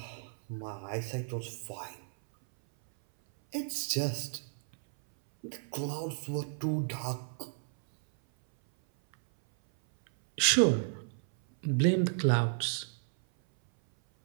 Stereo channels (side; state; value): left; silent; 56 dB below the other